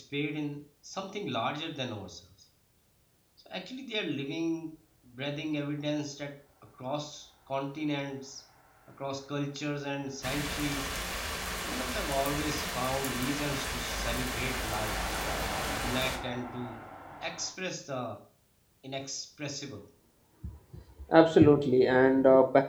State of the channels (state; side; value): identical; both; correlation 1.00